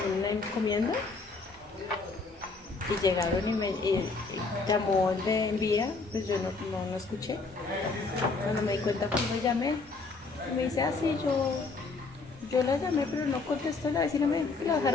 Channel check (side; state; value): right; quieter; 4.0 dB